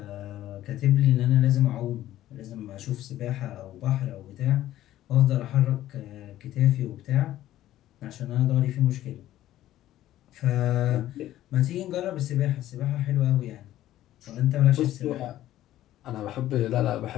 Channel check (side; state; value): right; quieter; 13.7 dB